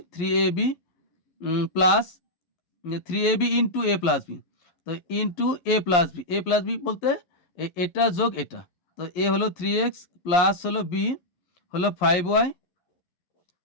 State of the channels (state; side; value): late; right; 11 ms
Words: 3ab plus 3ab into A plus B, তো ইন্টু এ প্লাস বি বলতে এটা যোগ এটা, তো এ হলো 3x প্লাস হলো বি হলো 5y,